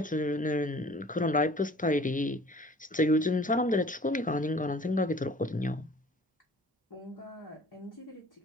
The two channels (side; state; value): both; normal; correlation 0.50